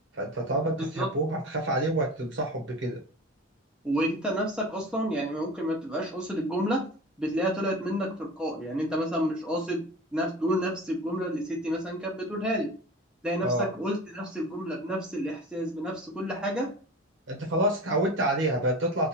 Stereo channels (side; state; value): both; normal; correlation 0.34